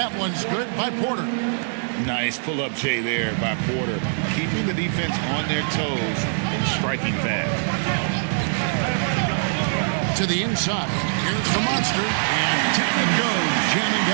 one's good by Porter. Nice pull-up Jay there by Porter, keeping the defense on their toes and striking fast. To the inside. Here's the monster. And down it goes, jamming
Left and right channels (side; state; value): left; silent; digital silence